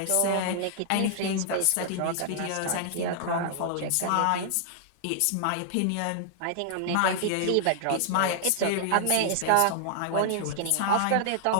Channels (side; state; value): both; different; correlation -0.01